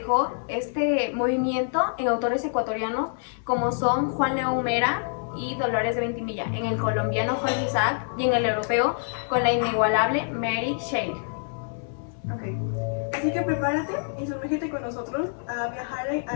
este movimiento en autores ecuatorianos como son Juan León Mera y Dolores de Ventimilla, en el colombiano Jorge Isaac y en el europeo con la inigualable Mary Shelley. Ok, así que prepárate y sumérgete con nosotros a viajar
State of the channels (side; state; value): right; silent; 61 dB below the other